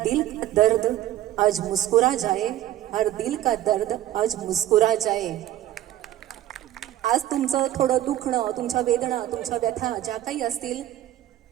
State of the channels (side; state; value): left; quieter; 13.1 dB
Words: का दर्द आज मुस्कुरा जाए, हर दिल का दर्द आज मुस्कुरा जाए। आज तुमचं थोडं दुखणं, तुमच्या वेदना, तुमच्या व्यथा ज्या काही असतील